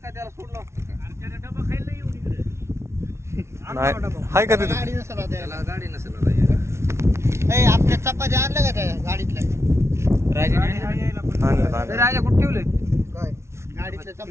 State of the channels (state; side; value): late; left; 0.13 ms